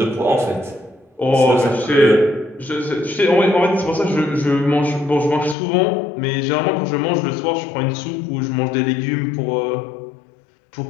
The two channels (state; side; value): drops out; right; at 5.6 s